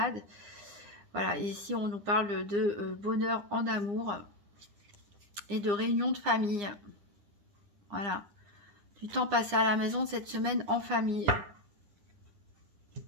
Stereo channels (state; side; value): late; left; 9.9 ms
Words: Voilà, et ici on nous parle de bonheur en amour et de réunion de famille. Voilà, du temps passé à la maison cette semaine en famille.